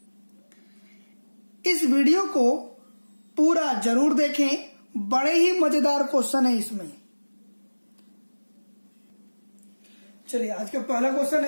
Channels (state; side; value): inverted; both; correlation -1.00